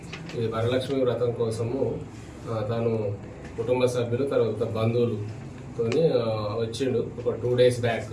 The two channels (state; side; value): identical; both; correlation 1.00